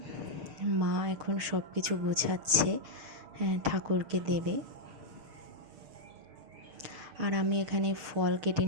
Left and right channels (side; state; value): left; late; 6.6 ms